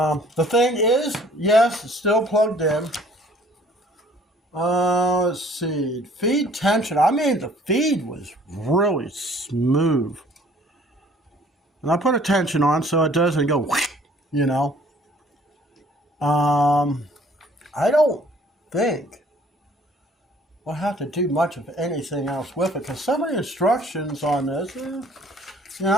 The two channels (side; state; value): both; normal; correlation 0.56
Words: thing is, yes, it's still plugged in. Let's see, feed tension. I mean, the feed was really smooth. And I put a tension on so it doesn't go, you know. I don't think we'll have to do much of anything else with it, because some of the instructions on this, you